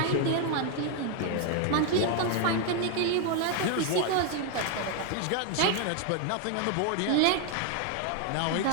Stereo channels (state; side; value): different; both; correlation 0.01